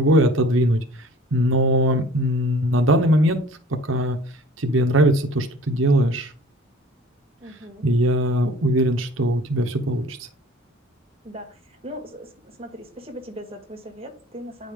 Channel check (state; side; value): normal; both; correlation 0.48